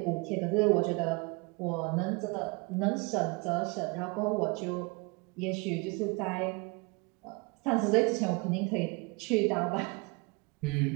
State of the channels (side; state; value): left; quieter; 28.3 dB